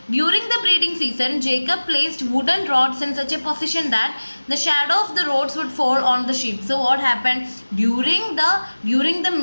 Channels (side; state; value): both; inverted; correlation -1.00